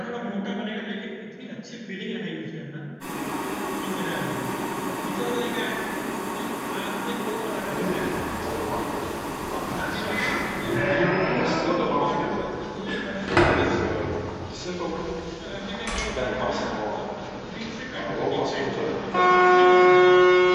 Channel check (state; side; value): identical; both; correlation 1.00